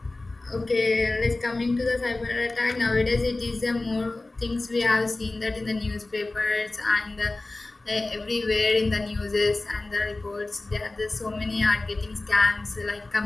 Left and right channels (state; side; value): quieter; right; 3.0 dB